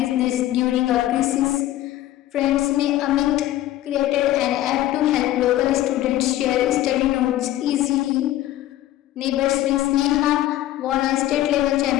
during a crisis. Friends में Amit created an app to help local students share study notes easily. Neighbors में Sneha won a state level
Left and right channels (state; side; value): quieter; right; 14.2 dB